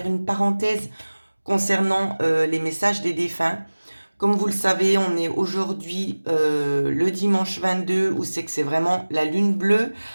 une parenthèse concernant les messages des défunts. Comme vous le savez, on est aujourd'hui le dimanche 22 où c'est que c'est vraiment la lune bleue.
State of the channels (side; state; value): both; inverted; correlation -1.00